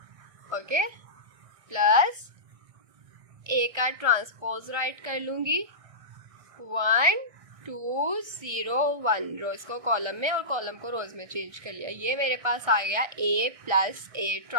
ओके, प्लस A का ट्रांसपोज राइट कर लूँगी 1 2 0 1, रोज को कॉलम में और कॉलम को रोज में चेंज कर लिया। ये मेरे पास आ गया A प्लस A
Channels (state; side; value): late; left; 1.6 ms